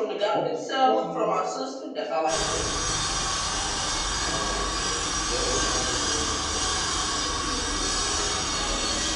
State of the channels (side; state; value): both; identical; correlation 1.00